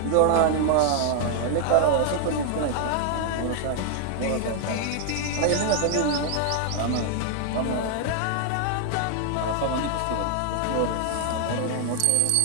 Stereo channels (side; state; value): both; different; correlation 0.00